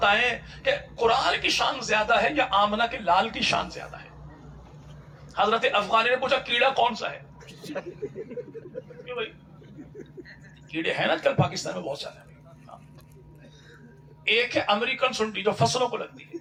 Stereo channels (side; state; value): both; identical; correlation 1.00